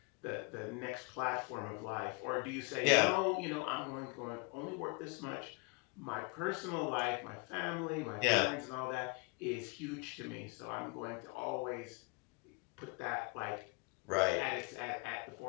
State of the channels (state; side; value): quieter; right; 29.5 dB